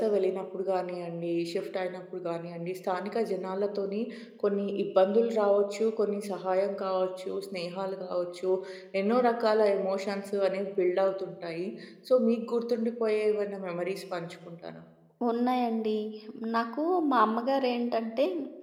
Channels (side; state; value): both; identical; correlation 1.00